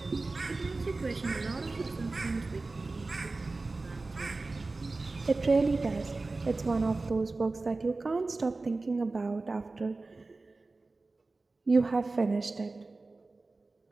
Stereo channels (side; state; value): left; quieter; 3.5 dB